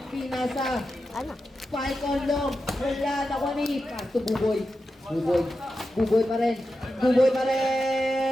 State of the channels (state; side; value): normal; both; correlation 0.90